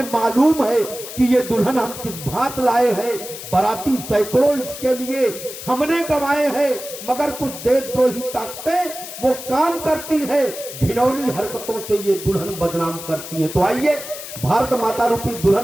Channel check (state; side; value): noise; left; hiss, 11 dB below the sound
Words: मालूम है कि ये दुल्हन हम किस भांत लाए हैं। बाराती सैकड़ों इसके लिए हमने गंवाए हैं, मगर कुछ देशद्रोही ताकतें वो काम करती है। घिनौनी हरकतों से ये दुल्हन बदनाम करती है। तो आइए, भारत माता रूपी